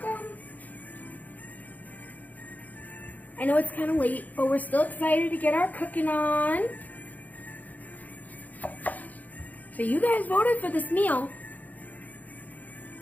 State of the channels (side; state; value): right; late; 0.079 ms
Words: I know it's kind of late, but we're still excited to get our cooking on. So you guys voted for this meal.